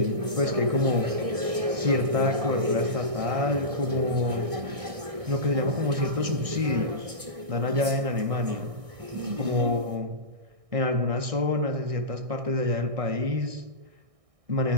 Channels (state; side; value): late; left; 1.6 ms